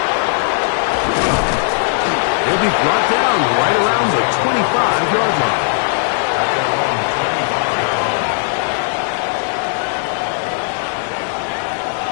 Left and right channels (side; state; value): right; silent; digital silence